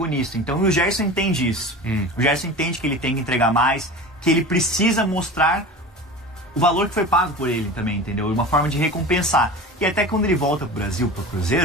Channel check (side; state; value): both; normal; correlation 0.33